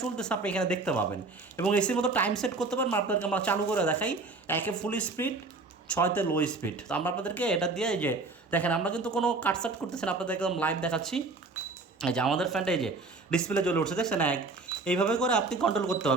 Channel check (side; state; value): left; quieter; 3.6 dB